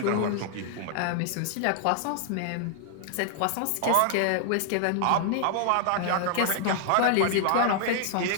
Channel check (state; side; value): different; both; correlation -0.01